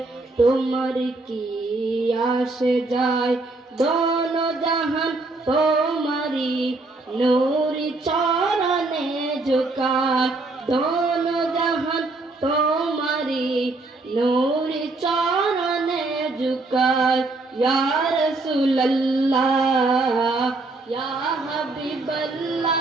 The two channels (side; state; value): left; quieter; 3.2 dB